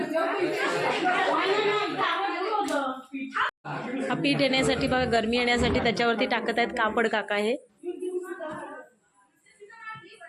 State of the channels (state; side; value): identical; both; correlation 1.00